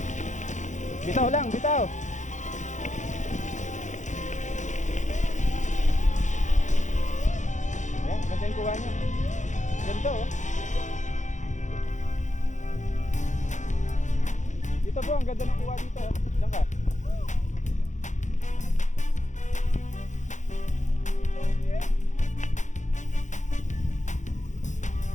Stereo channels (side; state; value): right; late; 0.35 ms